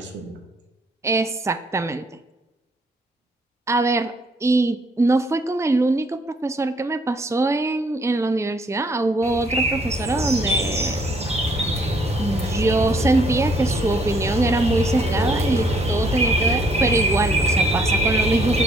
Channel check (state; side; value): normal; both; correlation 0.66